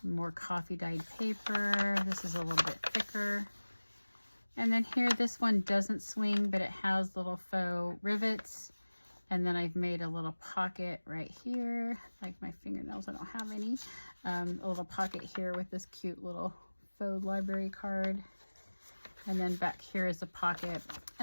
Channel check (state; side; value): inverted; both; correlation -1.00